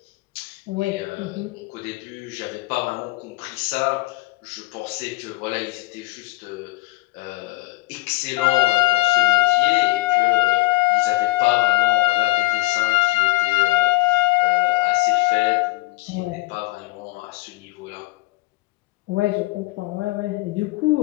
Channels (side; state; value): right; quieter; 20.8 dB